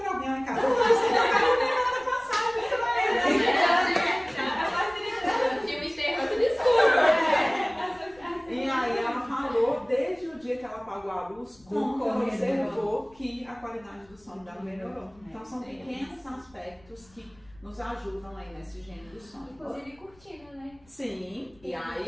alguém lá em casa. Eu falei assim, eu quero ver nada passar, E aí ela falou, desde o dia que ela apagou a luz, como ela observou que a qualidade do sono dela melhorou. Então são pequenos aspectos que nos ajudam aí nessa higiene do sono. Inclusive cortina, né? Sim, e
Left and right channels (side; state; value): left; noise; rumble, 29 dB below the sound